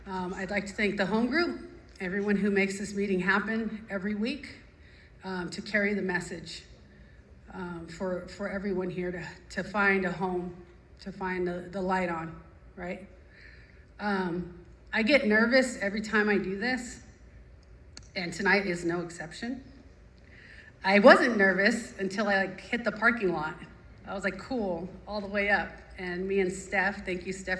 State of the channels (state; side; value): identical; both; correlation 1.00